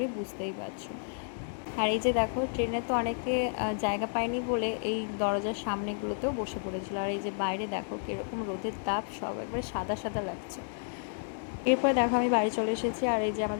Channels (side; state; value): right; silent; digital silence